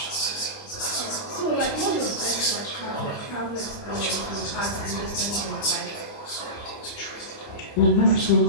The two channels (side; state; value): right; late; 29 ms